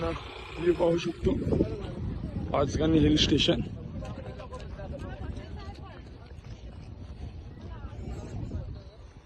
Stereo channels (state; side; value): identical; both; correlation 1.00